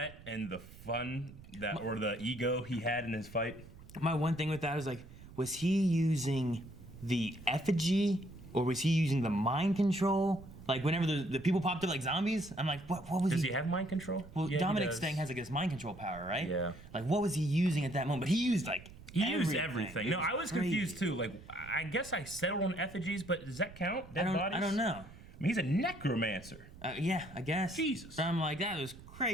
and the fun that, or the ego he had in his fight. My one thing with that is like, was he using the effigy or was he using the mind control? Like whenever the people popped up like zombies, I'm like, what was Does he have mind control? Well, Yeah, Dominic's thing has like this mind control power, right? Yeah. Like what was he using at that moment? But he used like used everything. It No, I was crazy. confused too. Like, I guess I settled on effigies, but does that count? Dead bodies? I don't know. I mean, he's a necromancer. Yeah, I guess. Jesus. So I'm like, that was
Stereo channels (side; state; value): right; noise; rumble, 18 dB below the sound